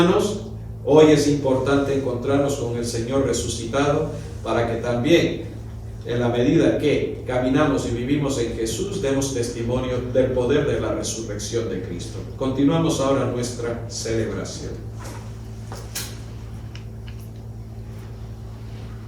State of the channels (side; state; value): both; identical; correlation 1.00